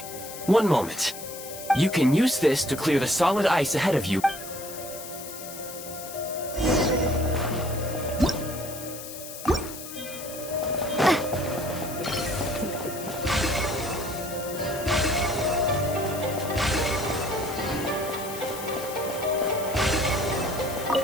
One moment. You can use this to clear the solid ice ahead of you.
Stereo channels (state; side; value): noise; left; hiss, 11 dB below the sound